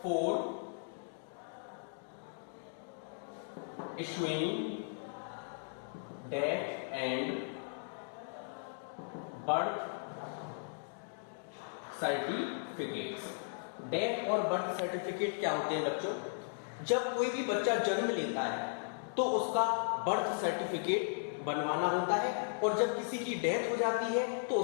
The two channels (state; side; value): silent; right; digital silence